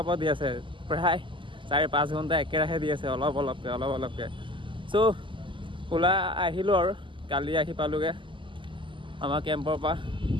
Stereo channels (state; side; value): late; left; 0.24 ms